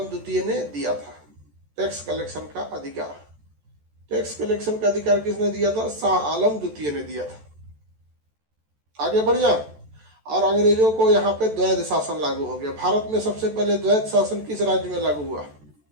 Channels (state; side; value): late; left; 14 ms